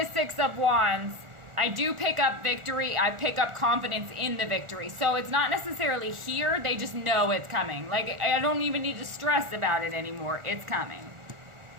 Six of Wands, I do pick up victory. I pick up confidence in the victory. So it's not necessarily here. They just know it's coming. Like, I don't even need to stress about it anymore. It's coming.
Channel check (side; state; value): left; late; 1.4 ms